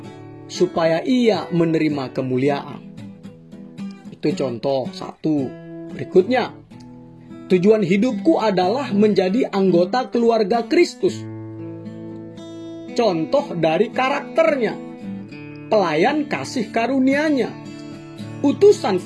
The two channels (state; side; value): identical; both; correlation 1.00